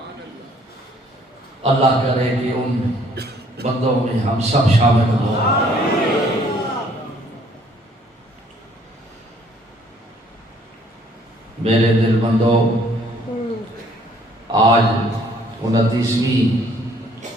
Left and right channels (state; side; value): normal; both; correlation 0.62